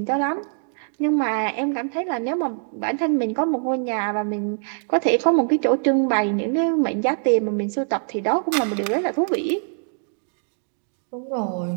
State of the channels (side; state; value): left; silent; digital silence